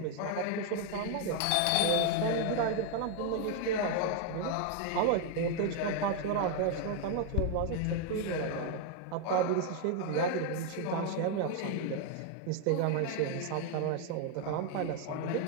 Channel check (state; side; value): different; both; correlation 0.00